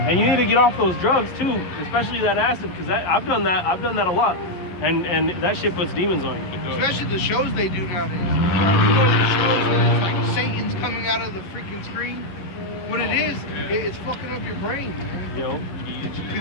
And you need to get off those drugs too, especially that acid, because I've done that. I've done that a lot, and that shit puts demons on you. Especially the shows they do nowadays. You know the shows that it's like Satan's coming out of the freaking screen. What it is, it's fucking up your brain, man. Yo,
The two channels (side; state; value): right; late; 11 ms